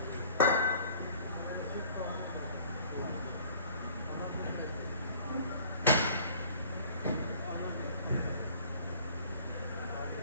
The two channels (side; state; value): both; inverted; correlation -0.51